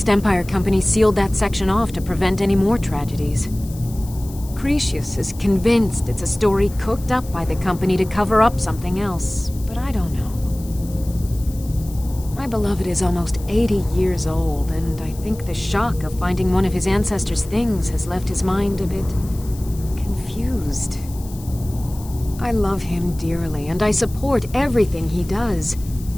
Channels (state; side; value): noise; left; hiss, 19 dB below the sound